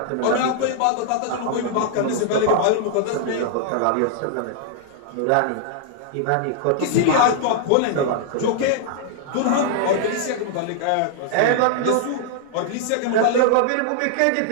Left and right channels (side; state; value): both; different; correlation -0.01